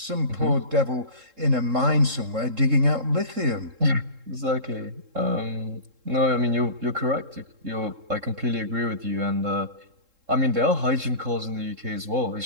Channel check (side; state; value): left; late; 3.7 ms